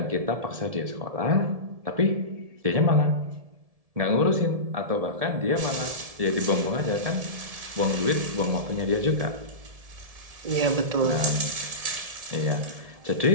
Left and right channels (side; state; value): left; late; 1.7 ms